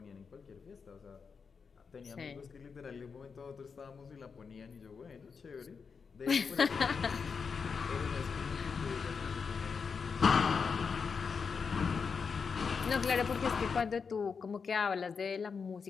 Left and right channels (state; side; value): quieter; right; 5.6 dB